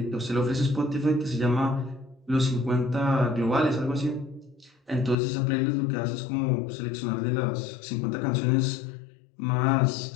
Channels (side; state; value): right; drops out; at 5.2 s